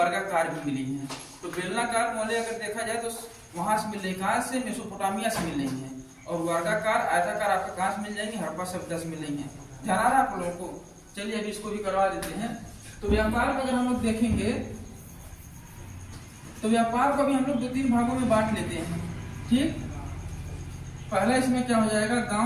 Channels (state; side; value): identical; both; correlation 1.00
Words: भी मिली है। तो बेलनाकार मोहरे अगर देखा जाए तो वहां से मिल रही, कहां से, मेसोपोटामिया से मिल रही है। और वर्गाकार आयताकार आपको कहां से मिल जाएंगे, हड़प्पा सभ्यता से मिल रही है। ध्यान आ रहा है आप लोगों को। चलिए अभी इसको भी करवा देते हैं। तो व्यापार में अगर हम लोग देखेंगे तो व्यापार को भी हम लोग 2-3 भागों में बांट लेते हैं। ठीक, पहला इसमें क्या हो जाएगा,